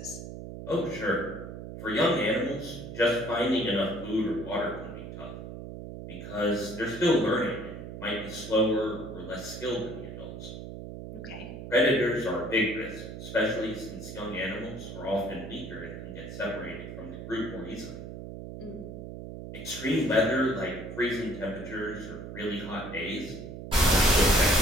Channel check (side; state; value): right; noise; hum, 10 dB below the sound